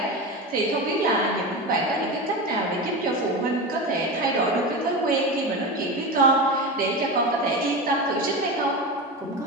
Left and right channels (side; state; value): both; normal; correlation 0.23